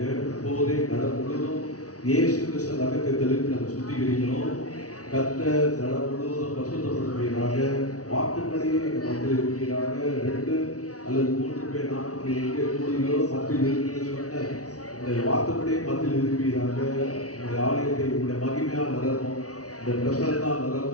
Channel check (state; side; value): late; right; 0.67 ms